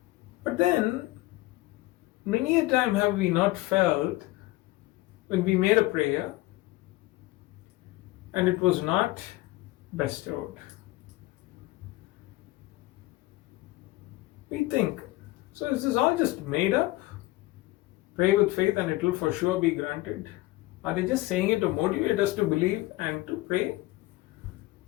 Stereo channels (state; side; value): quieter; right; 18.9 dB